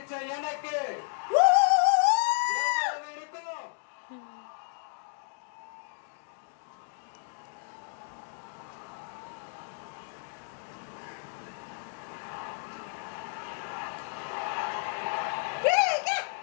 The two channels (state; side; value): silent; right; 56 dB below the other